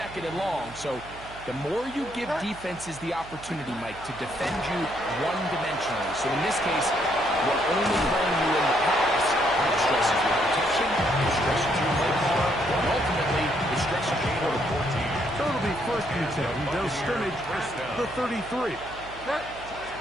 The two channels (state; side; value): noise; right; hum, 18 dB below the sound